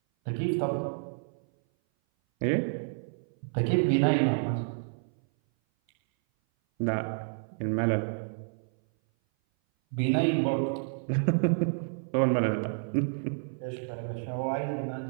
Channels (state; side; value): silent; left; 57 dB below the other